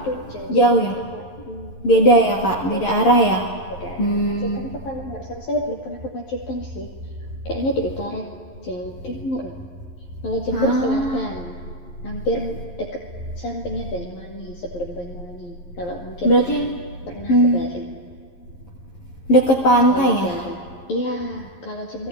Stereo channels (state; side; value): late; right; 11 ms